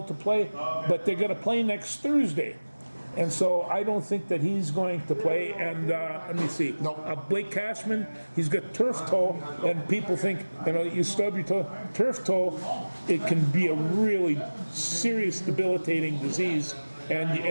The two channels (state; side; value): inverted; both; correlation -1.00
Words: to play, but they're going to play next Thursday. And so I don't think that he's going to play. And let me see. No. Blake Cashman, he's got turf toe, and people think, you stub your toe. Turf toe, it can be a really serious, debilitating disease, and